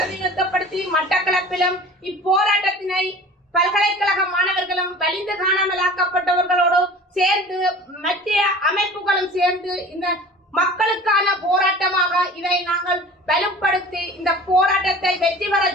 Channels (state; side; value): normal; both; correlation 0.42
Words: மட்டக்களப்பிலும் இப்போராட்டத்தினை பல்கலைக்கழக மாணவர்களும் வலிந்து காணாமலாக்கப்பட்டவர்களோடு சேர்ந்து மத்திய அமைப்புகளும் சேர்ந்து இந்த மக்களுக்கான போராட்டமாக இதை நாங்கள் வலுப்படுத்தி இந்த போராட்டத்தை வெற்றி பெற